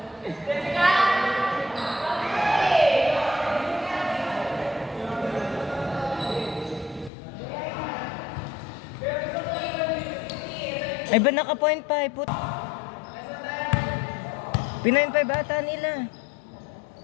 Ay ba naka-point 5? Put. Pinain 5 ata nila.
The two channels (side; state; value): right; drops out; at 7.1 s